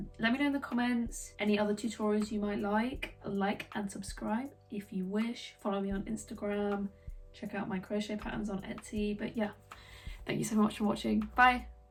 Let me know in the comments any other tutorials you might like and subscribe if you wish. Follow me on Instagram. Check out my crochet patterns on Etsy. But yeah, thank you so much for watching. Bye.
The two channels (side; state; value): both; identical; correlation 1.00